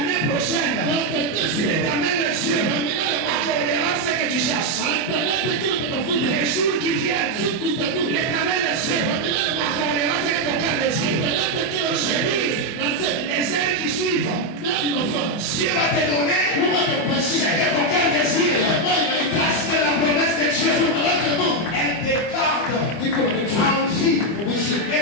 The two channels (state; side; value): late; right; 25 ms